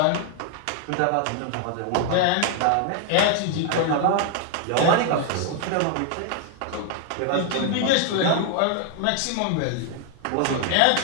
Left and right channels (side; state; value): both; different; correlation 0.00